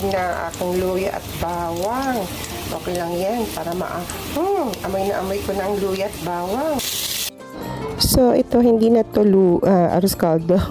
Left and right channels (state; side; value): identical; both; correlation 1.00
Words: na aking luya at bawang. Okay lang yan para amoy na amoy ko na ang luya at bawang. So, ito hindi na to arroz caldo.